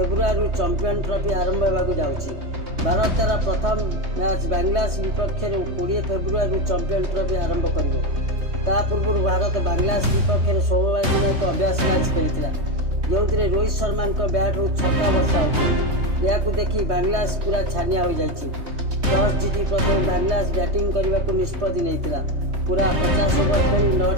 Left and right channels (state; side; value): late; left; 3.2 ms